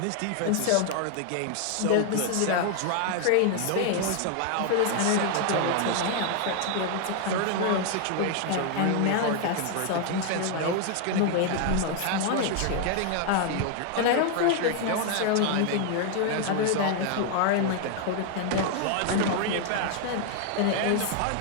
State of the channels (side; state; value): both; different; correlation 0.00